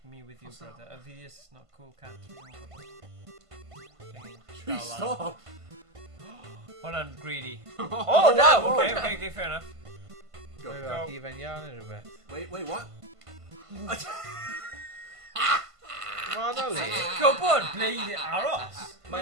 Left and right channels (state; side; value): late; left; 1.5 ms